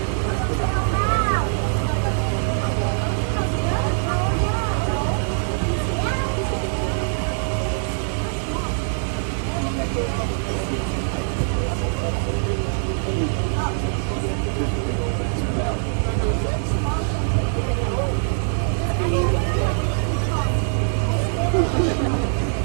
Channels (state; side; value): silent; left; digital silence